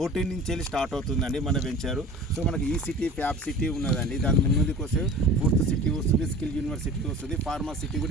నుంచి వెళ్ళి స్టార్ట్ అవుతుందండి మన వెంచరు. సో మనకి ఈ సిటీ ఫ్యాబ్ సిటీ ఉన్నదండి. దాని ముందుకు వస్తే 4th సిటీ వస్తుంది, స్కిల్ యూనివర్సిటీ వస్తుంది, ఫార్మా సిటీ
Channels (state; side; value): normal; both; correlation 0.41